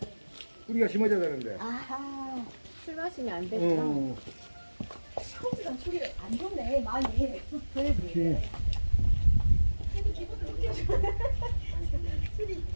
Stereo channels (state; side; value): inverted; both; correlation -1.00